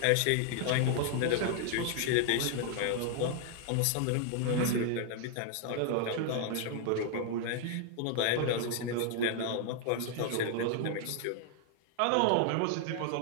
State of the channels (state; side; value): different; both; correlation 0.00